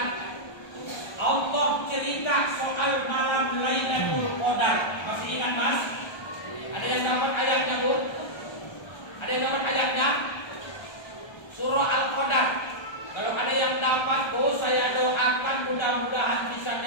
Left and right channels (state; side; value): late; right; 1.3 ms